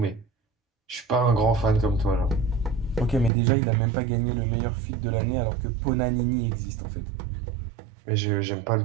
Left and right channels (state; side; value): drops out; left; at 3.3 s